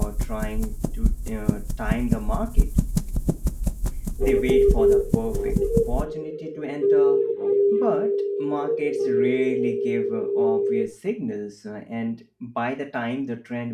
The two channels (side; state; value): both; identical; correlation 1.00